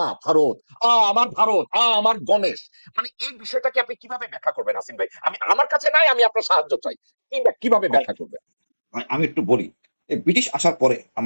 ভারত, আমার ভারত, আমার গণেশ, মানে এই বিষয়টাকে আপনি কিভাবে ব্যাখ্যা করবেন আসিন ভাই? আমি, আমার কাছে নাই, আমি আপনার সাহায্য চাই, কিভাবে ভাই ব্যাখ্যা করবেন? ভাই, আমি একটু বলি। এই ব্রিটিশ আসার পরে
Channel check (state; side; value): inverted; both; correlation -1.00